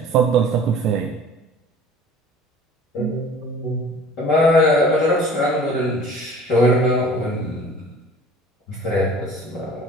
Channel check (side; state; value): both; normal; correlation 0.46